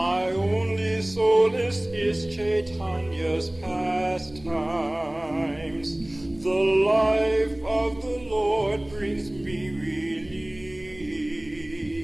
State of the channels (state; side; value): noise; right; hum, 22 dB below the sound